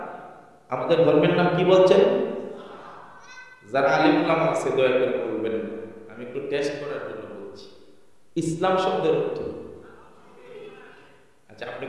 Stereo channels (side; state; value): both; identical; correlation 1.00